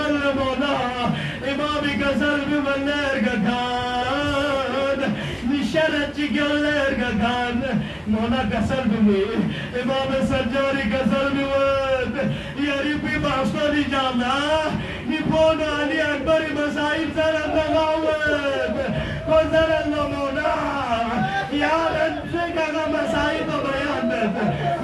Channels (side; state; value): both; identical; correlation 1.00